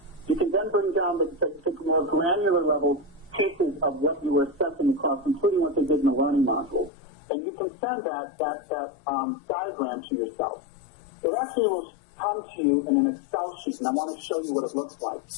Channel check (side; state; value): right; drops out; at 6.9 s